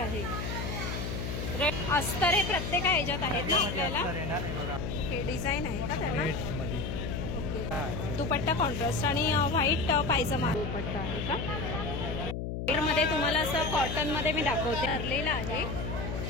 अस्तर हे प्रत्येक ह्याच्यात आहेत ना आपल्याला. ओके डिझाईन आहे का त्याला. ओके दुपट्टा कॉन्ट्रास्ट आणि व्हाईट पायजमा दुपट्टा आहे का. मध्ये तुम्हाला असं कॉटन मध्ये मी दाखवते भरलेला आहे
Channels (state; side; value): noise; left; hum, 4 dB below the sound